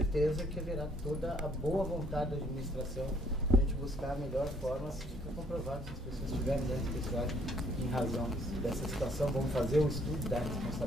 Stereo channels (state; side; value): normal; both; correlation 0.65